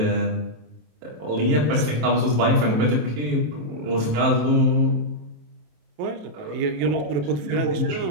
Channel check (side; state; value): left; late; 27 ms